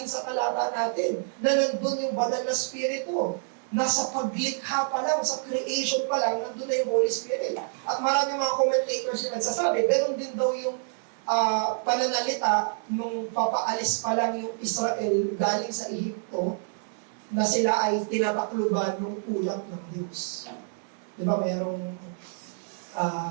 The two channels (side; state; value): left; silent; digital silence